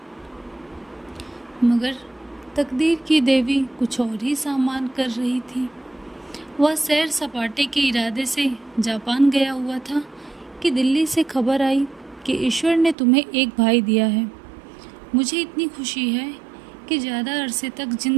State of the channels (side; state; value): left; drops out; at 13.0 s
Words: मगर तकदीर की देवी कुछ और ही सामान कर रही थी। वह सैर सपाटे के इरादे से जापान गया हुआ था कि दिल्ली से खबर आई कि ईश्वर ने तुम्हें एक भाई दिया है। मुझे इतनी खुशी है कि ज़्यादा अरसे तक